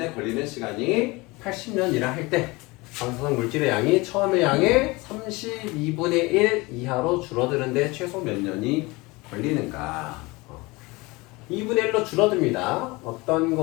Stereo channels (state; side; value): quieter; right; 23.6 dB